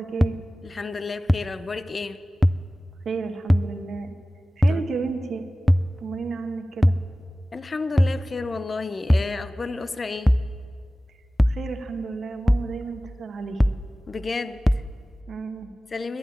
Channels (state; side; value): normal; both; correlation 0.97